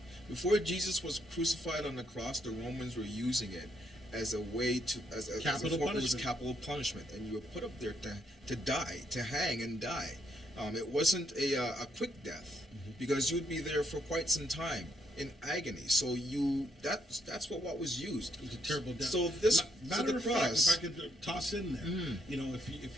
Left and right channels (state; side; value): normal; both; correlation 0.75